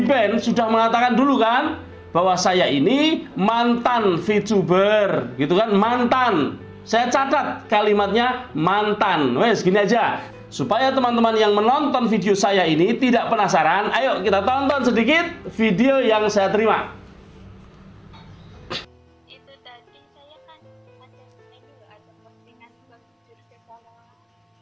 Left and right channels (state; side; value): identical; both; correlation 1.00